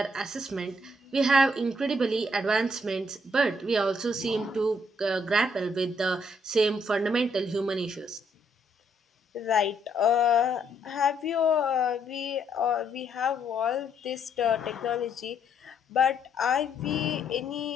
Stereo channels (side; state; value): both; normal; correlation 0.71